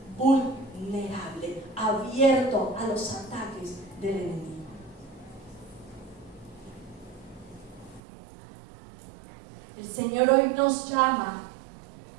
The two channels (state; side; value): drops out; left; at 8.0 s